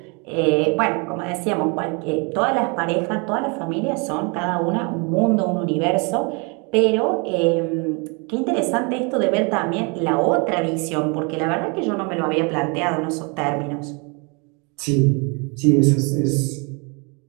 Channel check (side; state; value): left; quieter; 32.4 dB